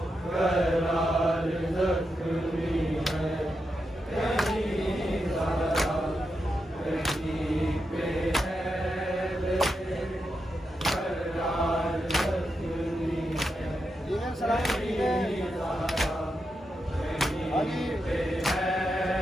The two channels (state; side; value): normal; both; correlation 0.86